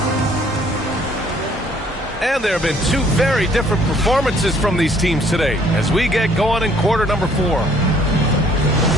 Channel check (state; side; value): normal; both; correlation 0.61